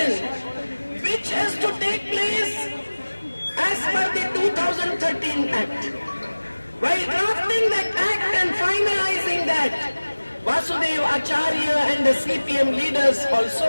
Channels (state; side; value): inverted; both; correlation -1.00